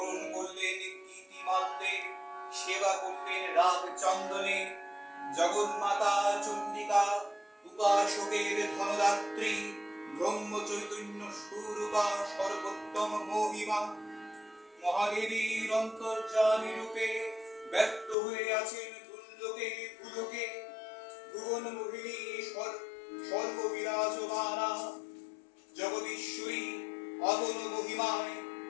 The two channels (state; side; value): drops out; right; at 18.2 s